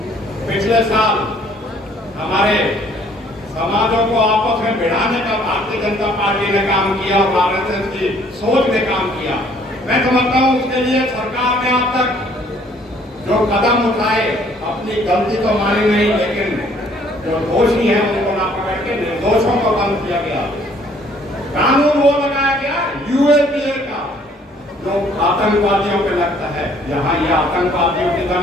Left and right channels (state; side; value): normal; both; correlation 0.60